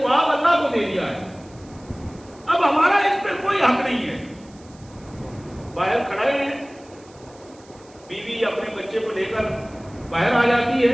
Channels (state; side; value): noise; right; hiss, 27 dB below the sound